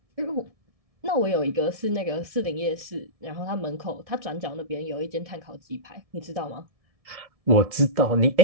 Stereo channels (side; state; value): left; late; 1.7 ms